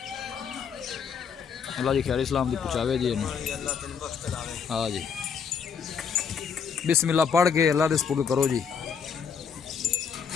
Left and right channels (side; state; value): right; quieter; 6.6 dB